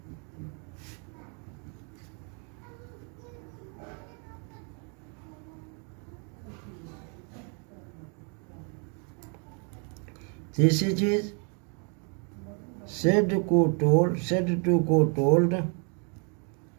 तीसरी चीज, सेड टू को टोल्ड, सेज टू को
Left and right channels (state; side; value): quieter; left; 38.4 dB